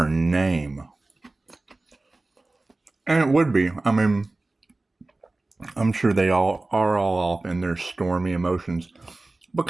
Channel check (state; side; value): quieter; left; 3.1 dB